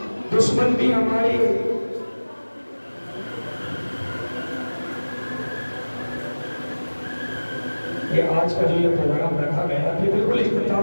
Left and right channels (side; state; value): both; inverted; correlation -1.00